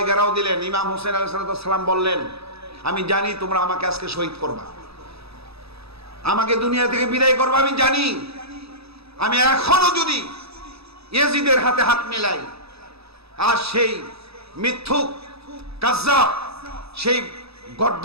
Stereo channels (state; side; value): late; left; 0.78 ms